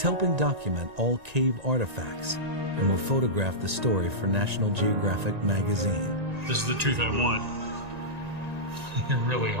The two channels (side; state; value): left; late; 1.9 ms